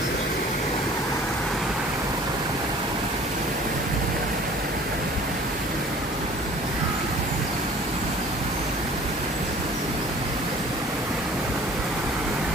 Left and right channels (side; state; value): both; normal; correlation 0.49